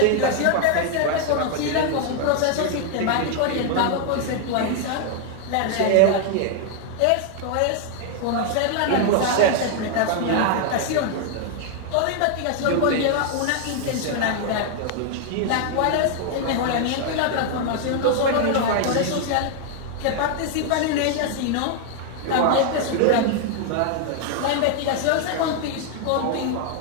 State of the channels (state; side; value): different; both; correlation 0.00